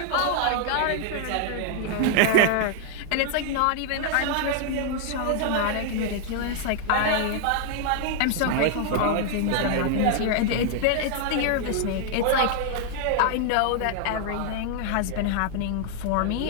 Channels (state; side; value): different; both; correlation 0.00